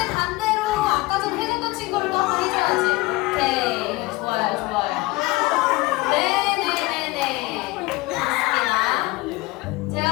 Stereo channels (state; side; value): quieter; right; 21.4 dB